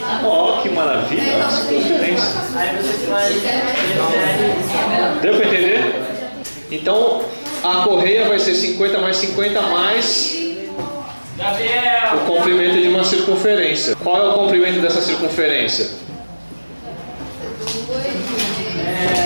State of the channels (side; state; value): both; inverted; correlation -1.00